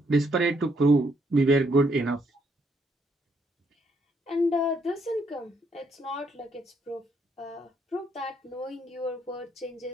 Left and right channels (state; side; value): normal; both; correlation 0.73